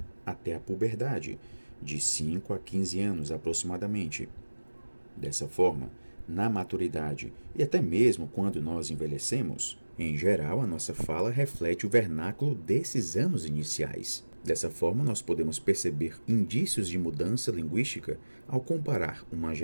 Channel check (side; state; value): both; inverted; correlation -1.00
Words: até a puberdade, de 5 a 15 anos aproximadamente. Dessa forma, na maturidade e até mesmo quando nós envelhecemos, em geral a nossa fala reflete o vernáculo desses anos iniciais. Dessa forma, nós podemos perceber indícios de mudança linguística ao comparar uma